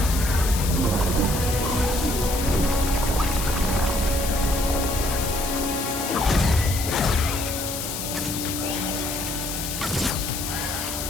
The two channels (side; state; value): left; noise; hiss, 5 dB below the sound